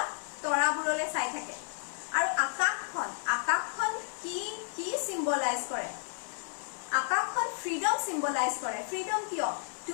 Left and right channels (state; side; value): silent; right; 56 dB below the other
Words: তৰাবোৰলৈ চাই থাকে আৰু আকাশখন কি সিম্বলাইজ কৰে আকাশখন ফ্ৰীডম সিম্বলাইজ কৰে ফ্ৰীডম কিয়